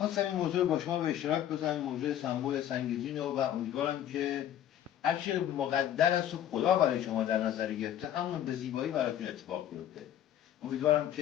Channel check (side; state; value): right; quieter; 11.0 dB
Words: این موضوع با شما به اشتراک بذارم، موضوع سمبل سنگزین رو، و امیدوارم که هرچی مقدر است و خدا برای شما در نظر گرفته همون به زیبایی براتون اتفاق بیفته. امیدوارم